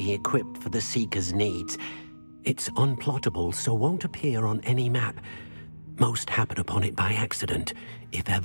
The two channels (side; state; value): both; inverted; correlation -1.00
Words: equipped for the Seeker's needs. It's unplottable, so won't appear on any map. Most happen upon it by accident, if